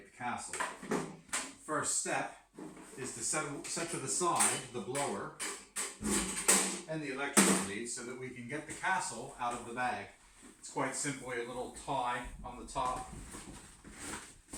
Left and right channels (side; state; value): both; identical; correlation 1.00